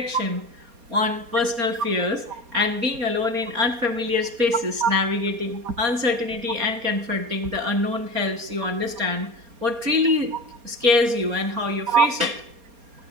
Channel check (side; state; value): left; late; 4.3 ms